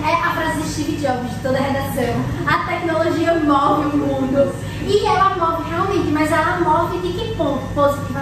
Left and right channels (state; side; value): identical; both; correlation 1.00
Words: a frase de Steve Jobs, de toda a redação. A tecnologia move o mundo. E ela move realmente, mas ela move de que ponto?